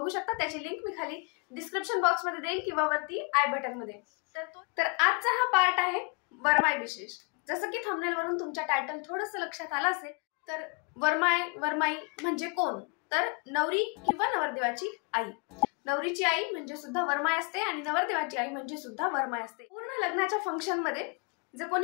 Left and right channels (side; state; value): right; quieter; 33.7 dB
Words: शकता। त्याची लिंक मी खाली डिस्क्रिप्शन बॉक्स मध्ये देईन किंवा वरती आय बटन मध्ये। तर आजचा हा पार्ट आहे वरमाई विशेष। जसं की थंबनेल वरून तुमच्या टायटल थोडंसं लक्षात आलं असेल तर वरमाई म्हणजे कोण? तर नवरी किंवा नवरदेवाची आई। नवरीची आई म्हणजे सुद्धा वरमाई असते आणि नवरदेवाची आई म्हणजे सुद्धा वरमाई असते। पूर्ण लग्नाच्या फंक्शन मध्ये जे